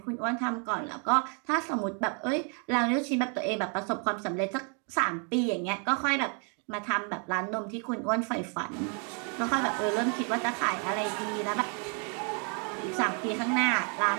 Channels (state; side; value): quieter; left; 38.7 dB